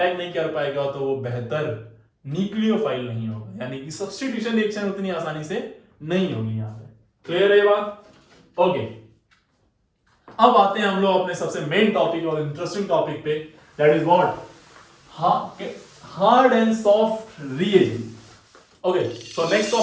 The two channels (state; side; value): identical; both; correlation 1.00